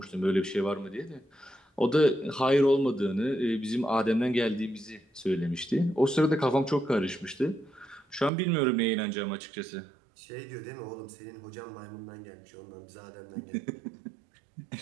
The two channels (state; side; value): drops out; left; at 8.3 s